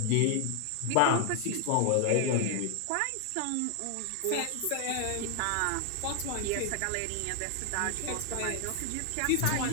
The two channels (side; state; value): both; different; correlation 0.00